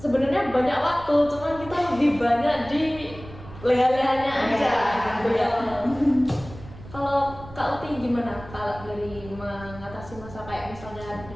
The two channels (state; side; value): noise; right; rumble, 16 dB below the sound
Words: sebenarnya banyak waktu, cuman kita lebih banyak di leha-lehanya aja gitu ya. Kalau Kak Uti gimana kalau dari mengatasi masa kayak misalnya